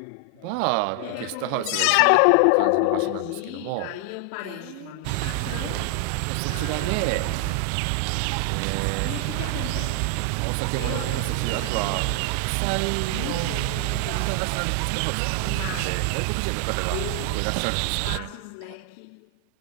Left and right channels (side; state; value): both; different; correlation 0.00